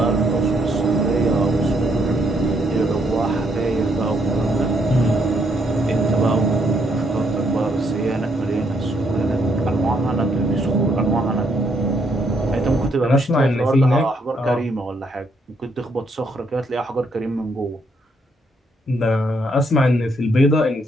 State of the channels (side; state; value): both; normal; correlation 0.73